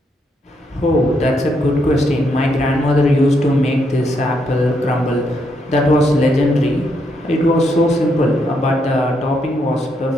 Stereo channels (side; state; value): both; normal; correlation 0.77